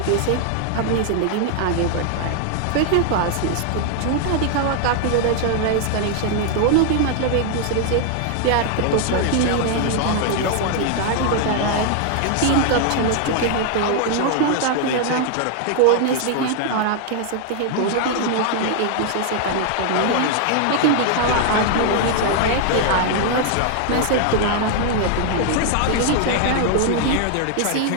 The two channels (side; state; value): both; different; correlation 0.00